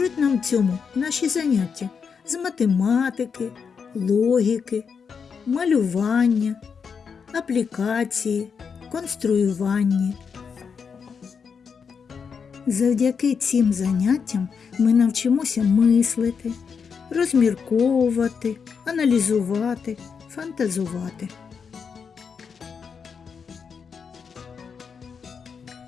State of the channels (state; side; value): quieter; right; 6.2 dB